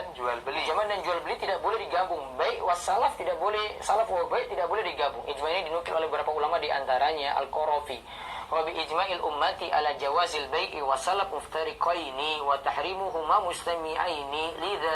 jual beli. Pinjaman dan jual beli tidak boleh digabung. Baik wassalaf tidak boleh, salaf wa baik tidak boleh digabung. Ijma ini dinukil oleh beberapa ulama, di antaranya Al-Qarafi. Wa bi ijma'il ummati ala jawazil bai'i wa salaf muftariqaini wa tahrimuhuma mustami'aini li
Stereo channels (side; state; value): both; identical; correlation 1.00